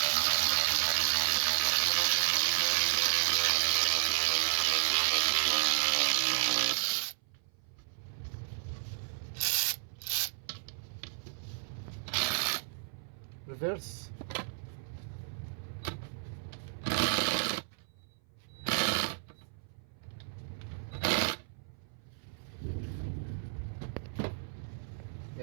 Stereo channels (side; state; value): left; silent; 56 dB below the other